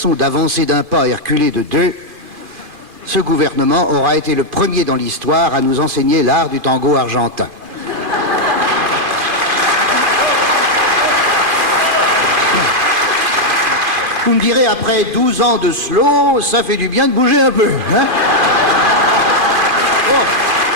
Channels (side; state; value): left; late; 2.4 ms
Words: d'avancer d'un pas et reculer de deux, ce gouvernement aura été le premier dans l'histoire à nous enseigner l'art du tango argentin. Vous me direz, après 12 ans de slow, ça fait du bien de bouger un peu, hein? Oh.